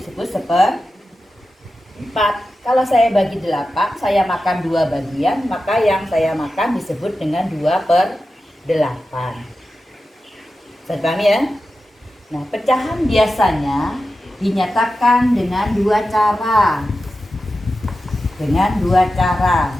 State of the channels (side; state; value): both; normal; correlation 0.92